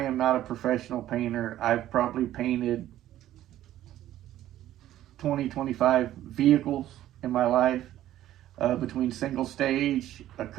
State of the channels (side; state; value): left; quieter; 13.2 dB